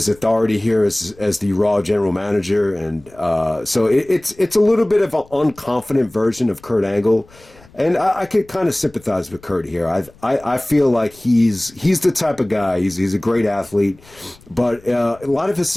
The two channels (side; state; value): left; noise; rumble, 26 dB below the sound